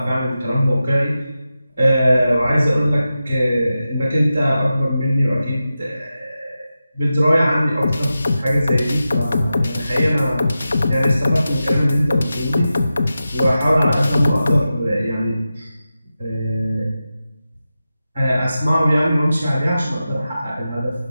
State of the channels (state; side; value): inverted; both; correlation -0.92